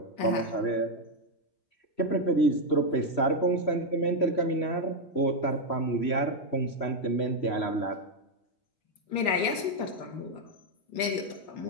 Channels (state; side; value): late; right; 3.6 ms